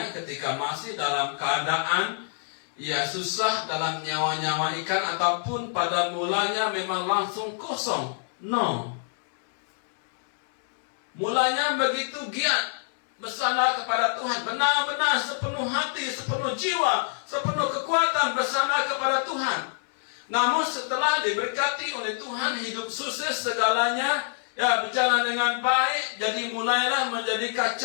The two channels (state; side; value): silent; right; digital silence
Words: ketika masih dalam keadaan susah dalam nyawa-nyawa ikan ataupun pada mulanya memang langsung kosong. No. Mulanya begitu giat bersandar kepada Tuhan. Benar-benar sepenuh hati, sepenuh jiwa, sepenuh kekuatan bersandar kepada Tuhan. Namun setelah diberkati oleh Tuhan, hidup sukses segalanya, berjalan dengan baik, jadi mulailah menjadi